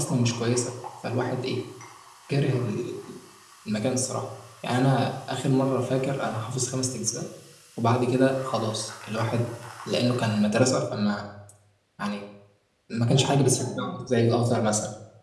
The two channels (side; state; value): both; identical; correlation 1.00